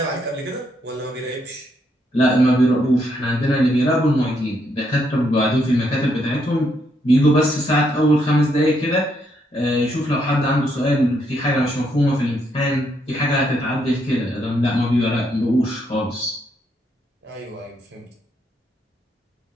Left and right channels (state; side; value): normal; both; correlation 0.75